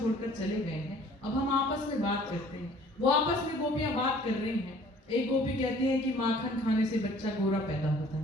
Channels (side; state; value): both; normal; correlation 0.53